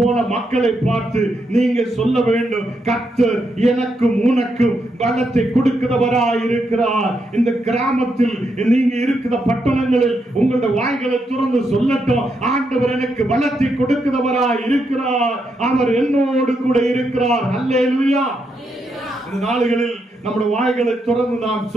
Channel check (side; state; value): both; normal; correlation 0.81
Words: மக்களை பார்த்து நீங்க சொல்ல வேண்டும், கர்த்தர் எனக்கும் உனக்கும் பலத்தை கொடுக்கிறவராய் இருக்கிறார். இந்த கிராமத்தில் நீங்க இருக்கிற பட்டணங்களில் உங்களுடைய வாய்களை துறந்து சொல்லட்டும், ஆண்டவர் எனக்கு பலத்தை கொடுக்கிறவராய் இருக்கிறார், அவர் என்னோடு கூட இருக்கிறார். ஹல்லேலூயா. இந்த நாளுகளில் நம்முடைய வாய்களை திறந்து நாம்